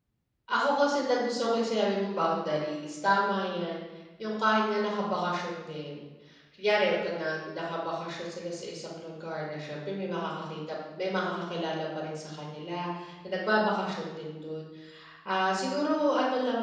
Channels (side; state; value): both; identical; correlation 1.00